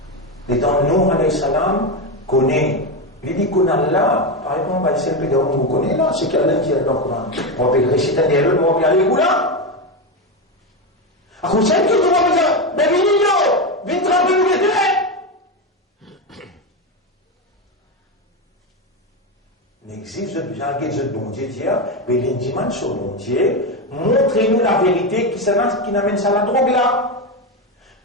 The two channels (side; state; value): both; normal; correlation 0.12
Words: Les temps, nous, alayhi salam, connaît. Il dit qu'on a là, par exemple, c'est le pédale qu'on connaît là, c'est qu'Allah qui est dans le Coran. On peut réciter un dialogue, on va aller où là? À cause de ça, tout le monde dit, mais Vinino, viens tremper nous les deux. N'existe pas de bon Dieu, mais l'indiman sur bon Dieu, montrez-nous la vérité qui n'amène ça à la drogue là.